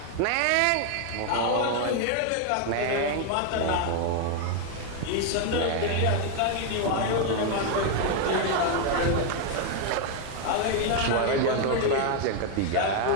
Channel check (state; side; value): different; both; correlation 0.01